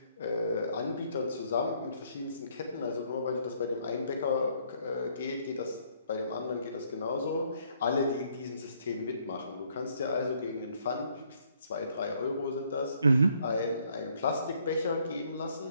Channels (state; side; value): inverted; both; correlation -0.67